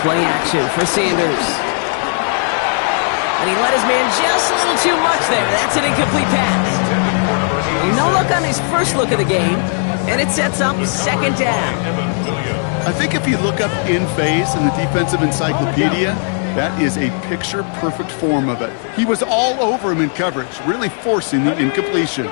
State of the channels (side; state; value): right; silent; 56 dB below the other